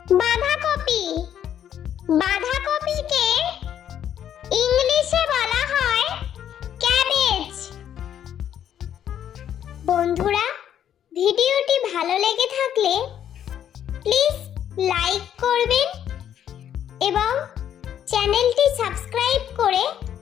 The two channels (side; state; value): right; quieter; 9.9 dB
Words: বাঁধাকপি। বাঁধাকপিকে ইংলিশে বলা হয় ক্যাবেজ। বন্ধুরা, ভিডিওটি ভালো লেগে থাকলে প্লিজ লাইক করবেন এবং চ্যানেলটি সাবস্ক্রাইব করে